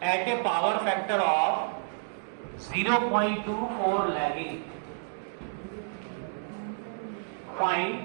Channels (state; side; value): silent; left; digital silence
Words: at a power factor of 0.24 lagging। Find